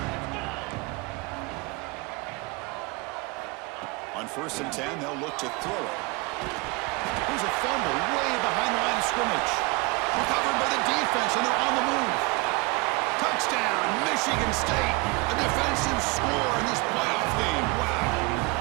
On 1st and 10, they'll look to throw it. Here's a fumble way behind the line of scrimmage. Recovered by the defense, and they're on the move. Touchdown, Michigan State. A defensive score in this playoff game. Wow.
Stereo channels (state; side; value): quieter; left; 26.2 dB